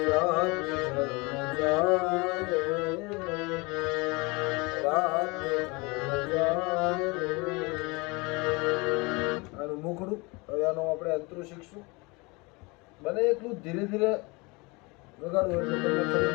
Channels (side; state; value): right; quieter; 26.7 dB